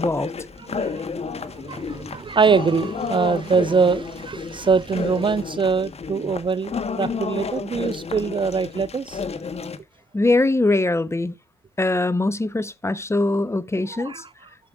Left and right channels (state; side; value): normal; both; correlation 0.67